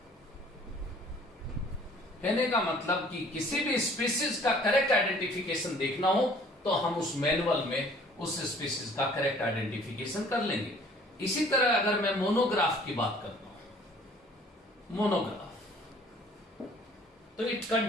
कहने का मतलब कि किसी भी स्पीसीज का करेक्ट आइडेंटिफिकेशन देखना हो तो हम उस मैनुअल में उस स्पीसीज का करेक्ट आइडेंटिफिकेशन कर लेंगे। इसी तरह अगर मैं मोनोग्राफ की बात करता हूं, मोनोग्राफ, तो it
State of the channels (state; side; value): normal; both; correlation 0.54